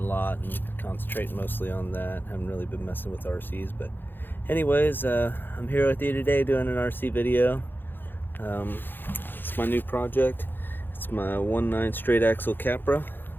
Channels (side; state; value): right; late; 0.097 ms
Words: lot and concentrating mostly on that. Haven't really been messing with RCs, but anyways, I'm here with you today doing an RC video. It's my new project. It's my 1.9 straight axle Capra.